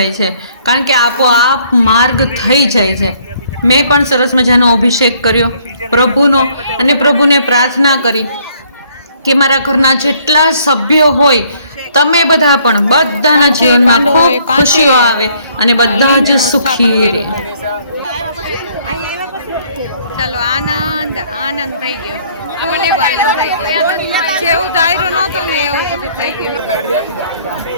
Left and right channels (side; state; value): both; inverted; correlation -0.63